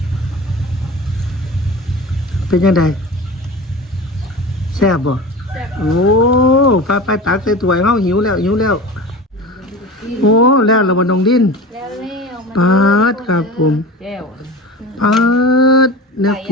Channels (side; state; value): both; normal; correlation 0.33